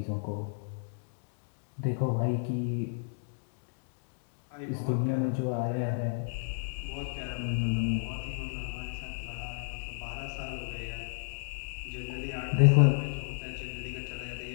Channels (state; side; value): silent; right; digital silence